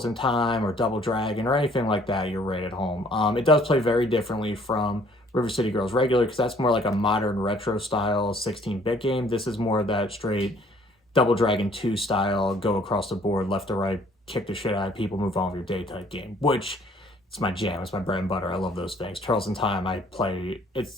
in Time or Double Dragon or anything like that, you're right at home. It does play very differently from River City Girls regular because that's more like a modern retro style 16-bit game. This is more of that straight Double Dragon 2 style, go across the board, left to right, kick the shit out of people, move on with your day type game, which it's my jam. It's my bread and butter. I love those things. Turtles in Time, I play.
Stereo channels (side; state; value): both; normal; correlation 0.59